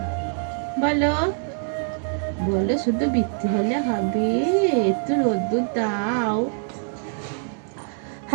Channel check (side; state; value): left; silent; 59 dB below the other